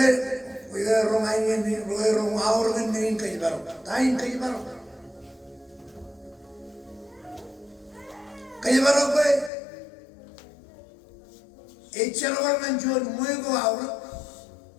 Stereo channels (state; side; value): drops out; right; at 9.5 s